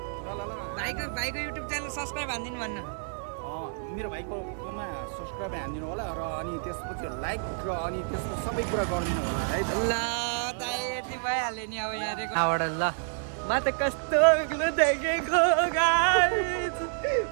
भाइको युट्युब च्यानल सब्सक्राइब हानिदिनु भन्न। मेरो भाइकोमा सब्सक्राइब हानिदिनु होला र अनि त्यसपछि लाइक र अनि त्यसको सबै कुरा गरिदिनु होला है। ल दाइ यति भइहाल्यो नि। अब यहाँबाट ल म त कस्तो अग्लो देखेको गाइस,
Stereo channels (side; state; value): left; silent; 59 dB below the other